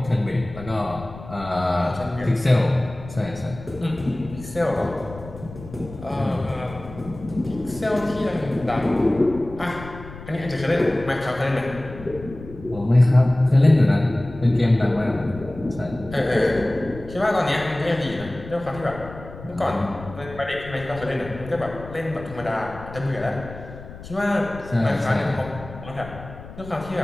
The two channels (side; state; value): left; noise; rumble, 15 dB below the sound